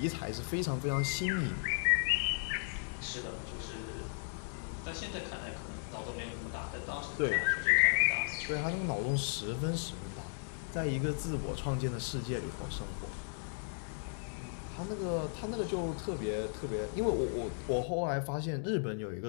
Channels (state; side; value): silent; right; digital silence